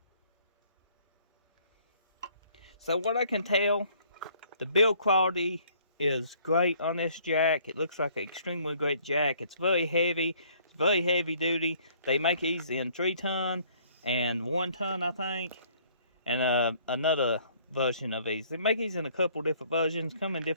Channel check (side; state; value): both; inverted; correlation -0.60